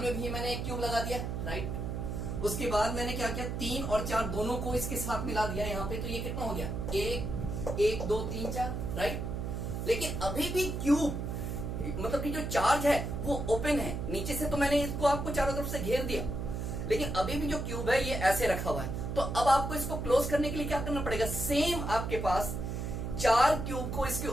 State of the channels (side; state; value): right; noise; hum, 3 dB below the sound